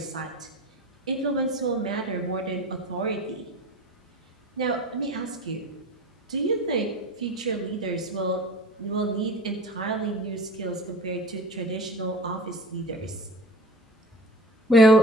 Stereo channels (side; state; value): both; normal; correlation 0.37